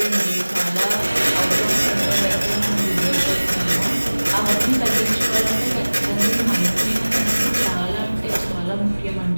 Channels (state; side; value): inverted; both; correlation -1.00